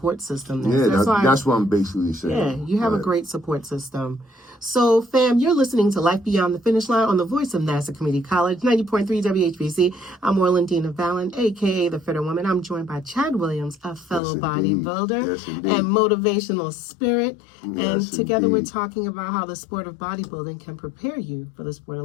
system there. Yeah, that's what I'm basically saying. Yeah, you have a great support system. So, fam, you're listening to Life Beyond the Finish Line on the voice of Nassau Community College, 90.3 WHBC. I'm Orlandina Balan, a.k.a. The Fitter Woman. I'm joined by Chad Williams, a fellow bodybuilder and motivational spirit. And together we're talking about how the sport of bodybuilding can prepare you for the sport of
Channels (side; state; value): right; drops out; at 14.2 s